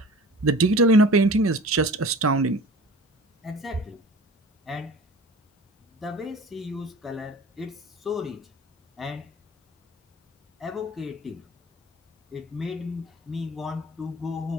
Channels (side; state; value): both; normal; correlation 0.41